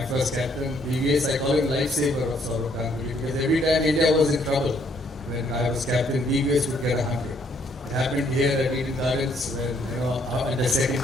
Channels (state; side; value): normal; both; correlation 0.68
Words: first captain, BVS, I call him lifesaver of Sourav Ganguly, because every time India was in trouble, when I was captain, BVS would get 100. It happened here at Eden Gardens, when, in the second